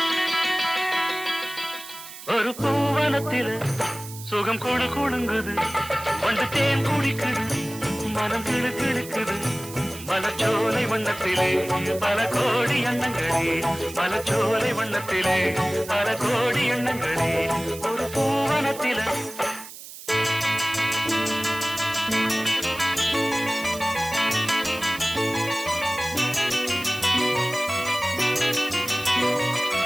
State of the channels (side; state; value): right; noise; hiss, 14 dB below the sound